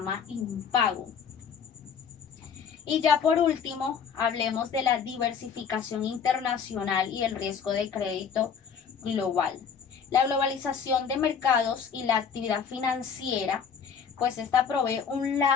impago. Y ya por último, hablemos de la diversificación internacional y el riesgo de crédito global. La globalización de mercados y la actividad financiera, pues esta provee un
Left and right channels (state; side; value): quieter; right; 6.8 dB